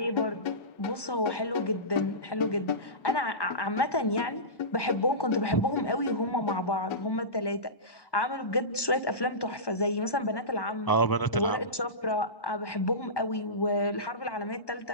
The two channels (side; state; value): right; late; 1.1 ms